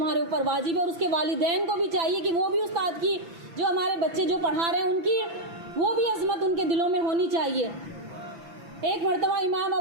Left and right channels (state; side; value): late; left; 5.9 ms